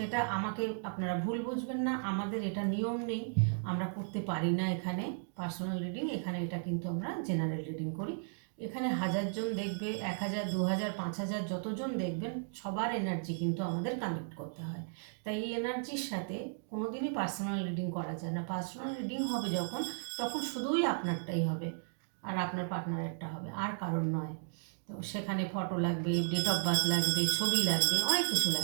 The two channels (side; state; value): left; silent; digital silence